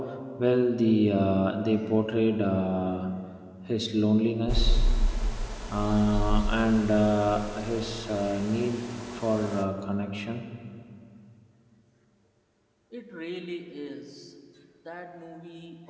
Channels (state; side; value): identical; both; correlation 1.00